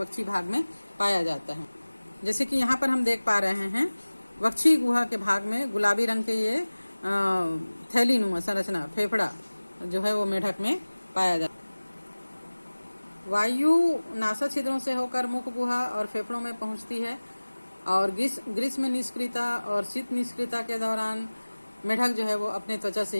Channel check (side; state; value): both; inverted; correlation -1.00